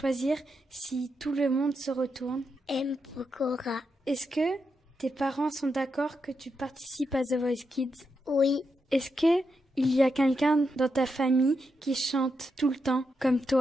si tout le monde se retourne? M. Pokora. Est-ce que tes parents sont d'accord que tu participes à The Voice Kids? Oui. Est-ce que il y a quelqu'un dans ta famille qui chante tout le temps, comme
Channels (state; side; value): normal; both; correlation 0.84